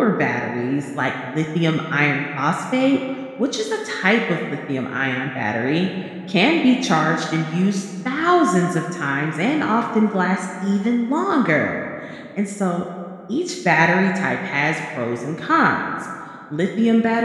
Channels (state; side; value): identical; both; correlation 1.00